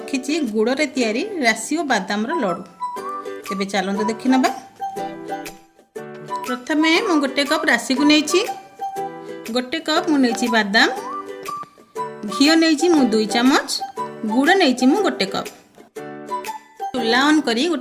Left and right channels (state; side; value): identical; both; correlation 1.00